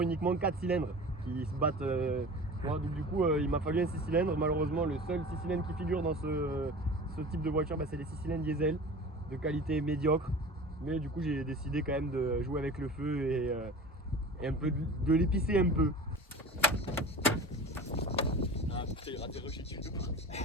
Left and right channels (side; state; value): both; normal; correlation 0.36